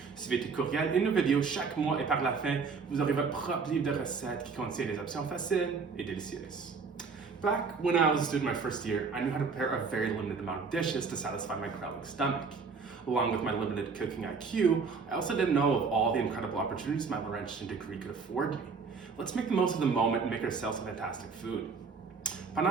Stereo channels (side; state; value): left; quieter; 5.1 dB